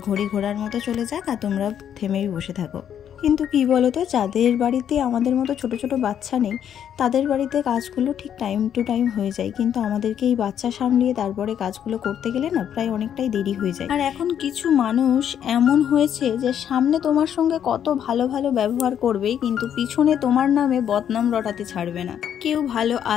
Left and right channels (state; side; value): quieter; right; 9.3 dB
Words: ঘড়ি ঘোড়ার মতো চলে যাক, আর তোমরা থেমেই বসে থাকো। কিন্তু কি বলো তো, যাদের বাড়িতে আমাদের মতো ছোট ছোট বাচ্চা নেই, তাদের বাড়িতে কাজগুলো ঠিক টাইম টু টাইম হয়ে যায়, কিন্তু আমাদেরকে এই বাচ্চা সামলিয়ে তারপরে কাজগুলো করতে গেলে না প্রায় অনেকটাই দেরি হয়ে যায়। আর এখন কিছু মানুষ এমন হয়েছে যে সামনে তোমার সঙ্গে কত ভালো ভালো ব্যবহার করবে, কিন্তু পিছনে তোমার নামে বদনাম রটাতে ছাড়বে না। কেউ ভালো